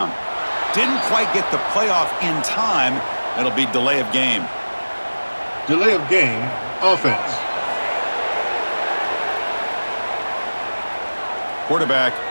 Didn't quite get the playoff in time. It'll be delay of game. Delay of game, offense. Quarterback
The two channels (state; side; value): inverted; both; correlation -1.00